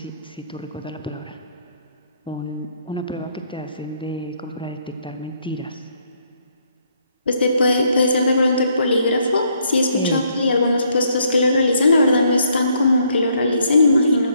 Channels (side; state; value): both; inverted; correlation -0.70